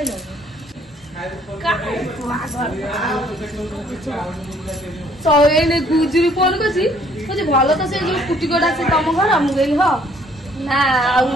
तो एने गुजुरी फोन करछि जे भालो तो से जो कुटी कोडा से तम घर हम गइल हो ना आ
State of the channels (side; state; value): both; normal; correlation 0.62